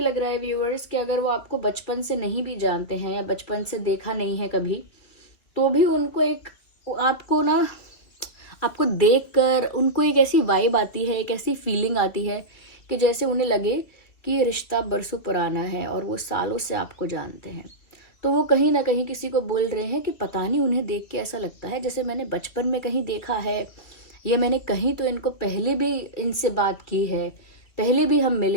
लग रहा है व्यूअर्स कि अगर वो आपको बचपन से नहीं भी जानते हैं या बचपन से देखा नहीं है कभी, तो भी उनको एक, आपको देखकर उनको एक ऐसी वाइब आती है, एक ऐसी फीलिंग आती है कि जैसे उन्हें लगे कि ये रिश्ता बरसों पुराना है और वो सालों से आपको जानते हैं। तो वो कहीं ना कहीं किसी को बोल रहे हैं कि पता नहीं, उन्हें देख के ऐसा लगता है जैसे मैंने बचपन में कहीं देखा है, या मैंने कहीं तो इनको पहले भी इनसे बात की है, पहले भी हम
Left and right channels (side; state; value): right; late; 2.9 ms